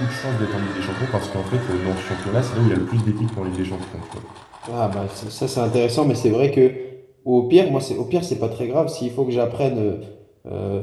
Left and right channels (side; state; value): both; identical; correlation 1.00